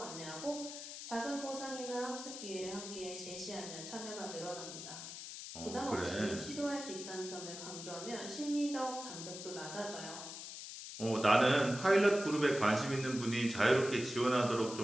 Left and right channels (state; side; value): noise; left; hiss, 9 dB below the sound